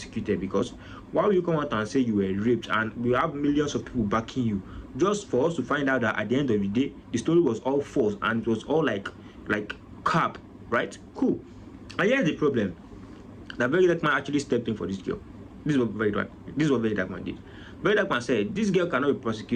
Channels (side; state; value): both; identical; correlation 1.00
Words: because why will you come out and say you were raped and we have millions of people backing you, just for us to find out that at the end of the day the story was all false and it was all like cap, right? Cool. And here's the problem. That Very Dark Man actually stepped in for this girl. This is what Very Dark Man did. Very Dark Man said this girl cannot be